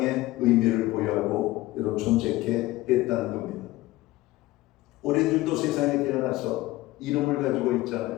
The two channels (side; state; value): right; quieter; 18.2 dB